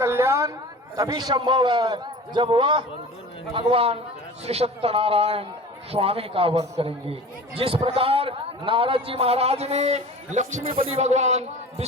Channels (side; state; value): both; normal; correlation 0.38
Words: तभी संभव है जब वह भगवान श्री सत्यनारायण स्वामी का व्रत करेंगे। जिस प्रकार नारद जी महाराज ने लक्ष्मीपति भगवान